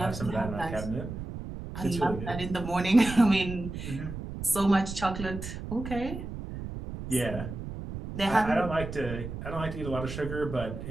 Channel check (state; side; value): noise; right; rumble, 8 dB below the sound